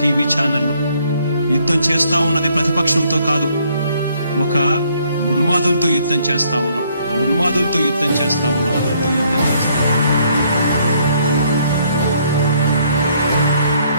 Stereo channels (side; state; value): both; inverted; correlation -0.67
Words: టీవీ ఛానళ్ళు. యుద్ధం చేస్తా ఉన్నది ప్రతిపక్షంతో కాదు, ఒక ఉన్మాదులతో యుద్ధం చేస్తా ఉన్నాం. ఉన్మాదులతో యుద్ధం చేస్తా ఉన్నాం.